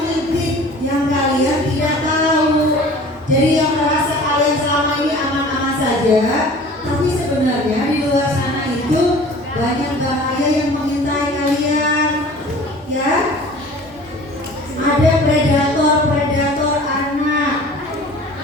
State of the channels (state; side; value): normal; both; correlation 0.45